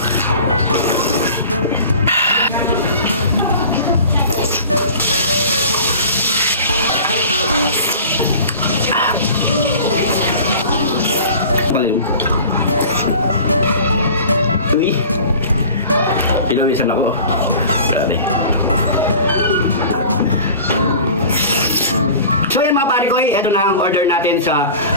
Ilawisan ako. Grabe. So yan mga pare ko, ito na ang order natin sa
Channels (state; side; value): inverted; both; correlation -0.41